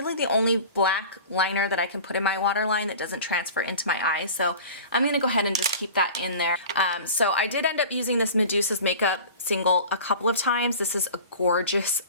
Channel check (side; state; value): both; inverted; correlation -0.38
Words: the only black liner that I can put in my waterline that doesn't transfer into my eyes. So I'm going to go ahead and just keep that in there. So I did end up using this Medusa's Makeup single a couple of times. This is a gorgeous,